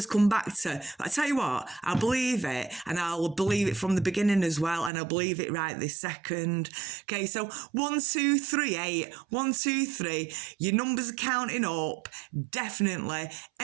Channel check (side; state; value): left; drops out; at 4.9 s